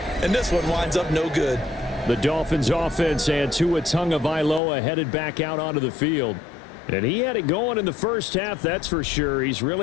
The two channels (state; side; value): drops out; right; at 4.6 s